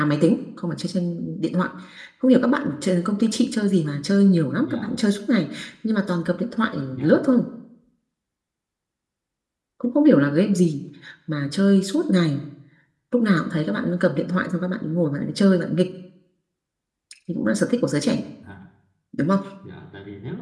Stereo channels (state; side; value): identical; both; correlation 1.00